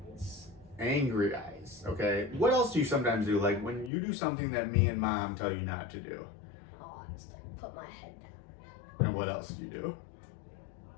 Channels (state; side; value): drops out; right; at 3.9 s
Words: eyes. Angry eyes, okay. What else do you sometimes do? Like when you do something that me and mom tell you not to do? Oh, I just like, put my head down. And what else do you do?